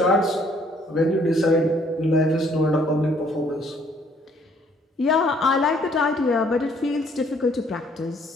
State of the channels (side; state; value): both; normal; correlation 0.63